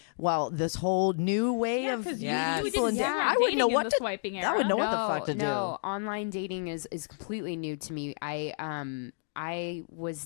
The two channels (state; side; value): silent; right; digital silence